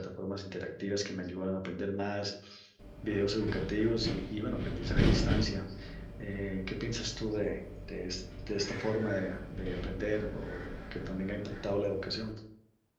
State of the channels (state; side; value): identical; both; correlation 1.00